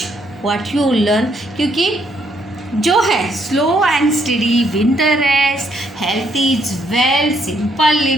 what you learn. क्योंकि जो है slow and study, win the rest, health is well, simple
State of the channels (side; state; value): both; normal; correlation 0.72